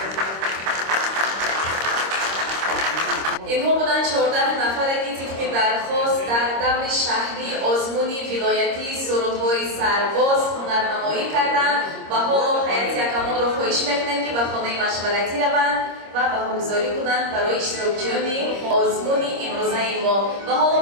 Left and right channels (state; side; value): late; left; 26 ms